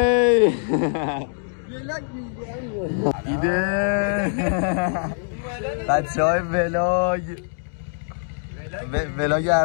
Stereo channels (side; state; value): right; silent; 63 dB below the other